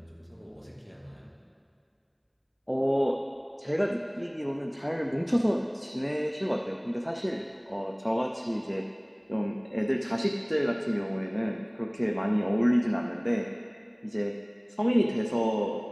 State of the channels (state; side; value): identical; both; correlation 1.00